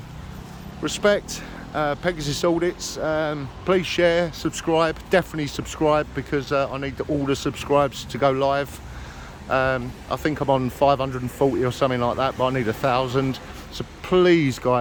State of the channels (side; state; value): both; identical; correlation 1.00